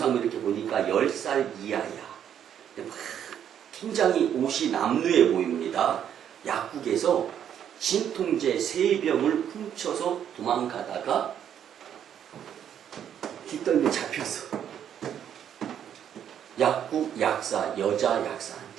이렇게 보니까 10살 이하야. 굉장히 옷이 남루해 보입니다. 약국에서 진통제 3병을 훔쳐서 도망가다가 뒷덜미 잡혔어. 약국 약사, 여자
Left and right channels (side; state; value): left; quieter; 9.3 dB